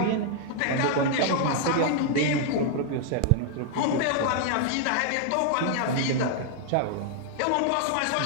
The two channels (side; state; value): both; different; correlation 0.00